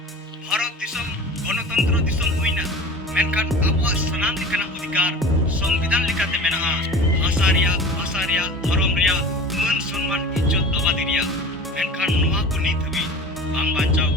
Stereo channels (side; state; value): both; normal; correlation 0.38